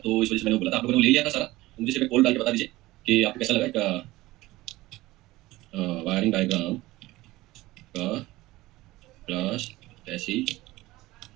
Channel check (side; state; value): left; quieter; 18.5 dB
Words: इस वजह से मैंने बोला था आप लोगों ने ले लिया था सारा। तो मुझे सिर्फ एक पोल डाल के बता दीजिए कि आपको कैसा लगा एक वायरिंग डायग्राम का क्लास कैसी